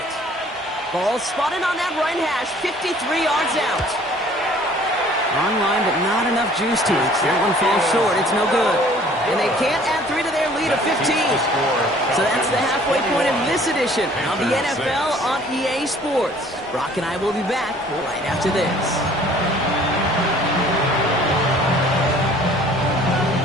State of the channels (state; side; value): normal; both; correlation 0.54